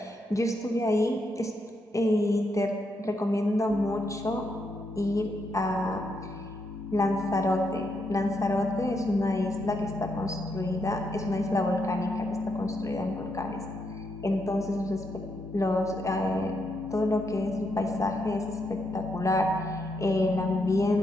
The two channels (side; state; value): both; normal; correlation 0.79